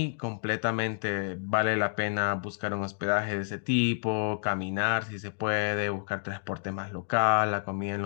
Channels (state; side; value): silent; right; 58 dB below the other